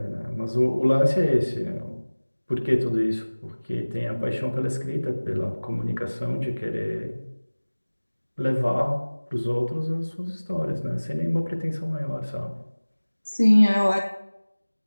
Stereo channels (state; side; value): inverted; both; correlation -1.00